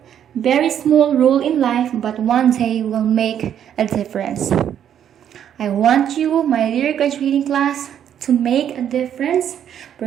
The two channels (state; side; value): quieter; left; 9.6 dB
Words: small role in life, but one day will make a difference. I want you, my dear graduating class, to make a difference.